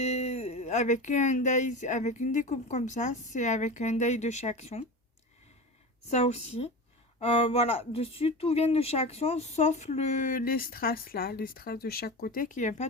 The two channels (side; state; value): both; normal; correlation 0.28